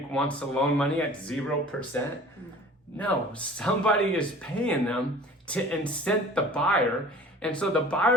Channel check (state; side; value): normal; both; correlation 0.45